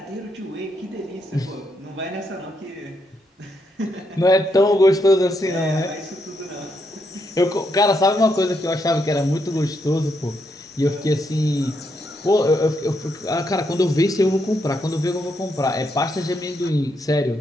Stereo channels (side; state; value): both; normal; correlation 0.79